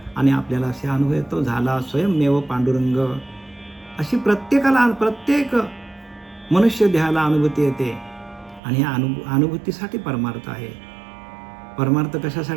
आणि आपल्याला असे अनुभव येतो, झाला स्वयंमेव पांडुरंग. अशी प्रत्येक मनुष्य देहाला अनुभूती येते आणि ह्या अनुभूतीसाठी परमार्थ आहे. परमार्थ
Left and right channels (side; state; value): left; drops out; at 8.6 s